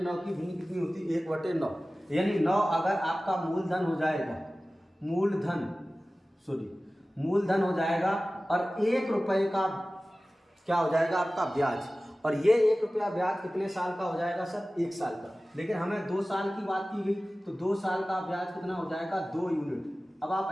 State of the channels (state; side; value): normal; both; correlation 0.97